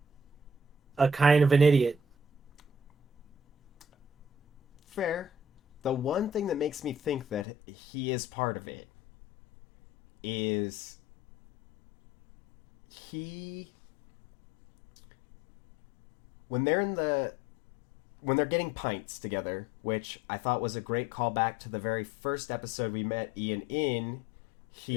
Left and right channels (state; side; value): drops out; right; at 7.5 s